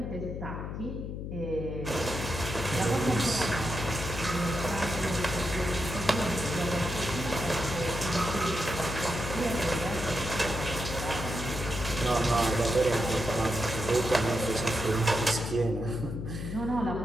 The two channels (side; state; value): left; noise; hum, 6 dB below the sound